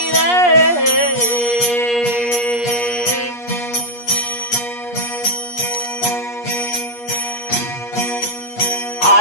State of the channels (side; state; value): right; late; 8.4 ms